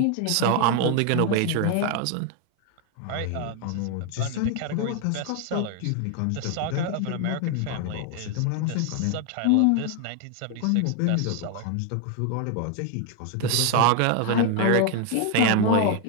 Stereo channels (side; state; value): both; different; correlation 0.01